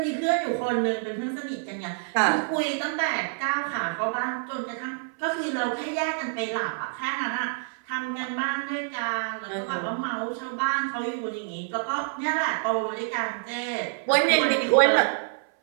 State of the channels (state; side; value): silent; left; 60 dB below the other